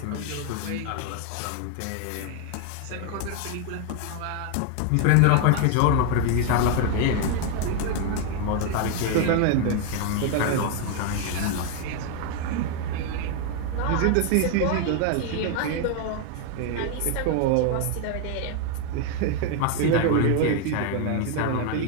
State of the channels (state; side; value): different; both; correlation 0.00